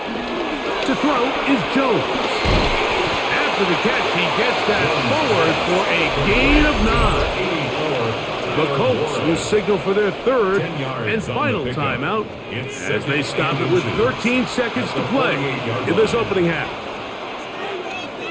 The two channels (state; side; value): identical; both; correlation 1.00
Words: throw is Jones. After the catch, he gets that forward for a gain of 9. The Colts will signal for their third and final timeout as they stop it with 13 seconds to play in this opening half.